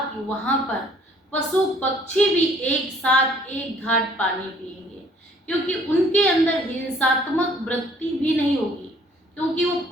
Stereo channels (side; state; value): both; normal; correlation 0.59